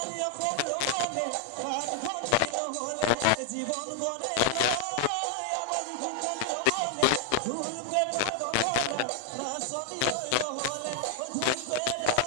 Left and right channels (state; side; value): different; both; correlation 0.00